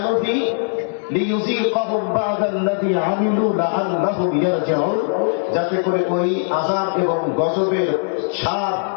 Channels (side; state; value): right; silent; digital silence